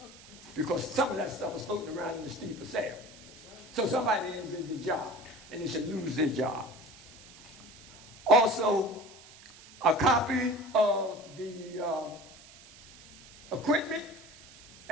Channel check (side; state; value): right; noise; hiss, 20 dB below the sound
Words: Because some of that stuff was floating around in the street for sale. So somebody did the job, and they should lose their job. Also, a copy of the equipment